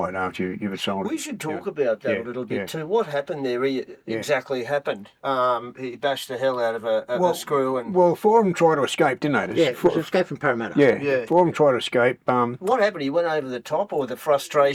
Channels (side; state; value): both; identical; correlation 1.00